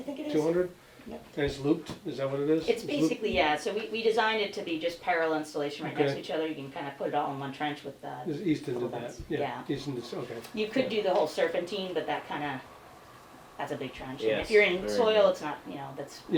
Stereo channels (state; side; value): identical; both; correlation 1.00